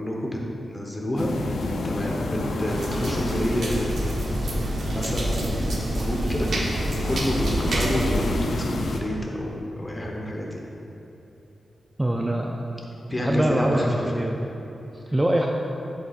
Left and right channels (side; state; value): both; normal; correlation 0.91